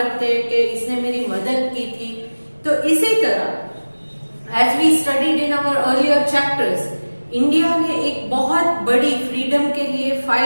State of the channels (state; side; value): inverted; both; correlation -1.00